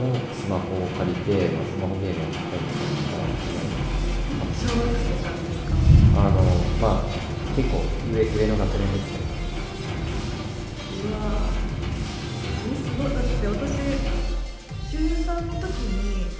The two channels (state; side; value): identical; both; correlation 1.00